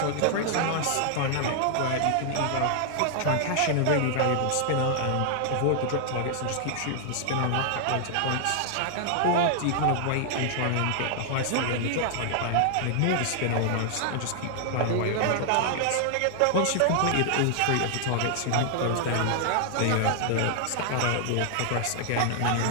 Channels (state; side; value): different; both; correlation 0.00